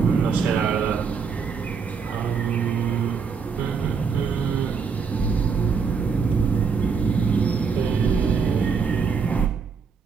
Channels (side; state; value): left; quieter; 5.6 dB